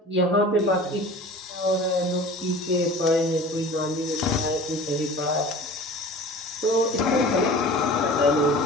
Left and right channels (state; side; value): normal; both; correlation 0.40